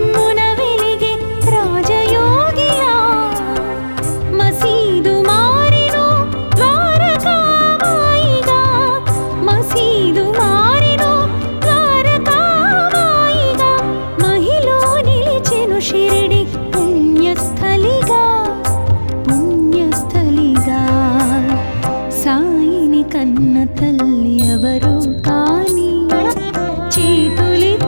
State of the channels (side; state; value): both; inverted; correlation -1.00